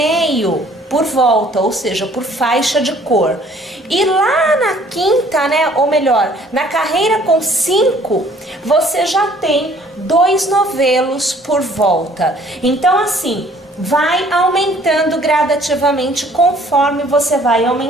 por volta, ou seja, por faixa de cor. E lá na quinta, né, ou melhor, na carreira com 5, você já tem 2 novelos por volta. Então, assim, vai aumentando gradativamente conforme você vai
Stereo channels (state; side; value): normal; both; correlation 0.57